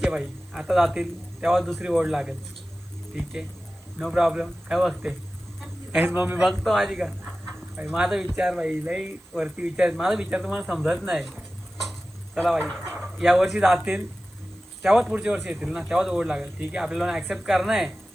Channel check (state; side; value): noise; right; hiss, 29 dB below the sound